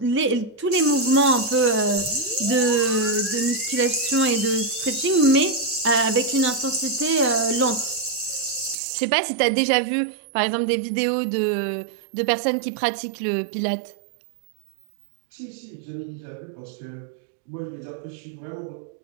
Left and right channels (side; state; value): left; drops out; at 8.8 s